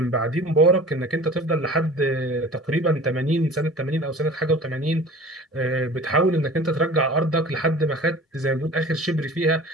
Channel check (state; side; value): normal; both; correlation 0.42